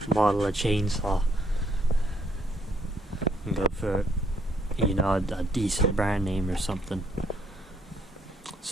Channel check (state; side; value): normal; both; correlation 0.70